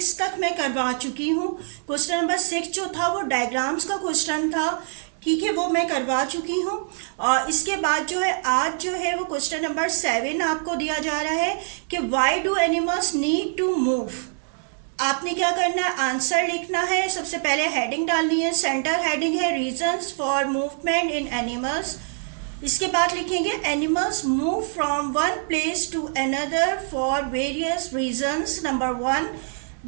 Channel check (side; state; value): left; silent; digital silence